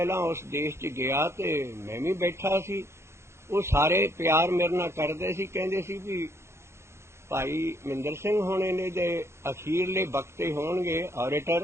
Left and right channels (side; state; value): left; late; 0.13 ms